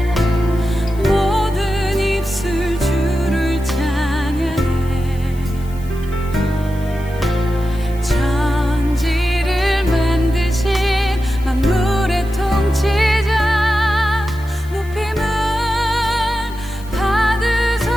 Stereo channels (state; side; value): noise; left; hiss, 23 dB below the sound